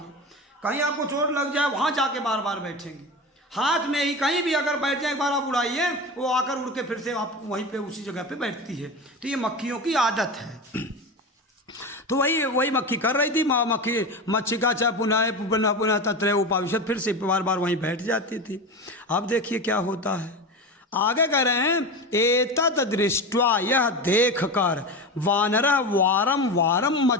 कहीं आपको चोट लग जाए वहाँ जाके बार बार बैठेंगे, हाथ में ही कहीं भी अगर बैठ जाए एक बार आप उड़ाइए, वो आकर उड़ के फिर से आप वहीं पे उसी जगह पे बैठती है। तो ये मक्खियों की आदत है। तो वही मक्खी कर रही थी। मक्खी मच्छिका च पुनः पुनः पुनः तत्र उपाविशत, फिर से बार बार वहीं बैठ जाती थी। अब देखिए क्या होता है, आगे कह रहे हैं, एतत् दृष्ट्वा, यह देख कर, वानरः वारम वारम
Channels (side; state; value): both; normal; correlation 0.24